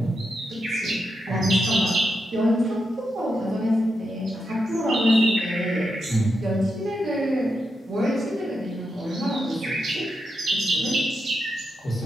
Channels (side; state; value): both; normal; correlation 0.85